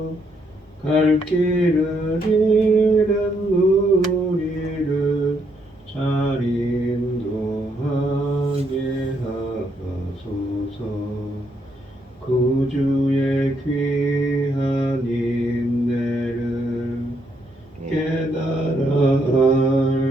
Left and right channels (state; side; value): normal; both; correlation 0.74